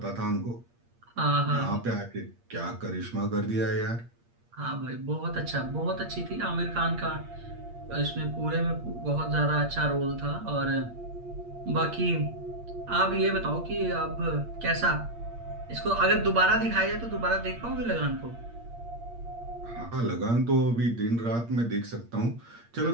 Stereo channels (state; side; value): late; left; 8.6 ms